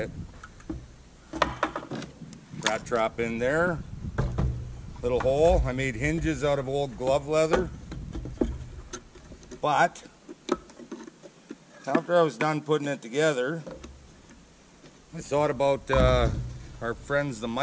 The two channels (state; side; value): identical; both; correlation 1.00